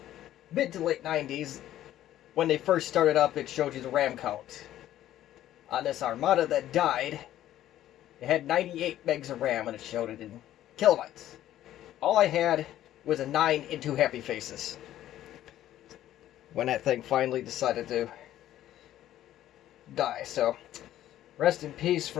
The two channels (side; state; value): right; quieter; 12.8 dB